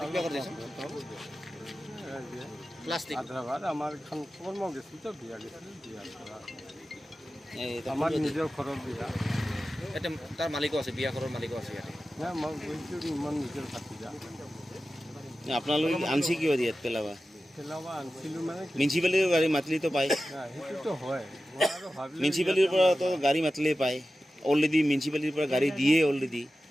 কৰি দিছে প্লাষ্টিক আধা ভাত আমাৰ এখন কৰ্ম গেছিল তো বিয়া গেছিল বিয়াৰ পৰা এই আমাৰ নিজৰ ঘৰৰ বিয়া এটা তাৰ মালিকো আছে বিয়া ঘৰৰ মালিকো আছে ইয়াতে নাই মই গৈছোঁ ইমান নিজৰ ভাতিজা আপোনালোকে আনছি কিয় দিয়াত পেলাবা পেলাবা আনিছিলোঁ মানে মিউনিচিপালিটিৰ গাড়ী মাতিলেতো পায় সেইটোতো হয় মই আৰু ভাবিলোঁ মিউনিচিপালিটিৰ পৰাতো গাড়ী মাতিলেই পায় অলৰেডি মিউনিচিপালিটিৰ পৰা গাড়ী দিয়ে অলৰেডি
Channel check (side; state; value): both; normal; correlation 0.94